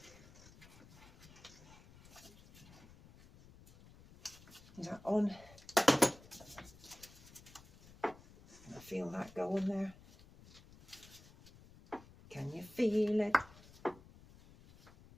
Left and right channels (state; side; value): noise; left; rumble, 22 dB below the sound